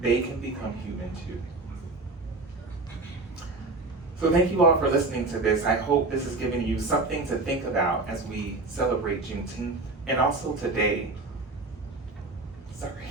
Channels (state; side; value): quieter; left; 3.3 dB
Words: they can become human too. So thank you all for listening to this. I hope this has given you something to think about as we celebrate Juneteenth, and also today,